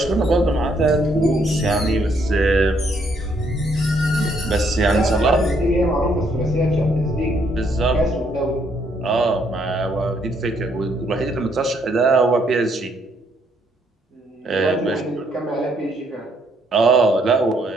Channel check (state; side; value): normal; both; correlation 0.71